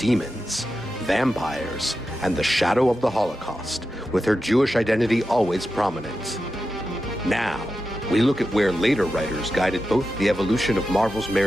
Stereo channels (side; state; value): both; normal; correlation 0.90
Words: vampires, and the shadow of the Holocaust, with her Jewish identity always prominent. Now, we look at where later writers guided both the evolution of Marvel's